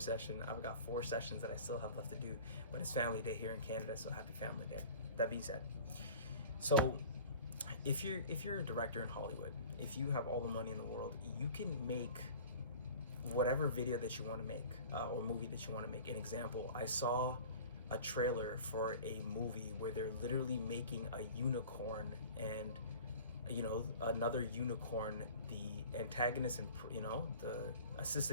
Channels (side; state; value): both; inverted; correlation -0.42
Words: I've got 4 sessions that I still have left to do, but it's family day here in Canada, so happy family day. That being said, so if you're a director in Hollywood, if you have all the money in the world, you can make whatever video that you want to make, or movie that you want to make. An example, I saw a trailer for a movie where they're literally making a unicorn and another unicorn the antagonist, and the